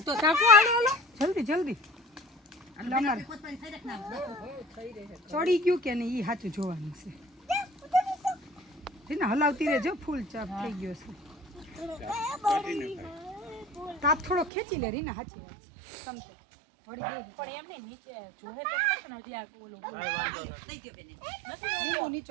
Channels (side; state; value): left; drops out; at 14.5 s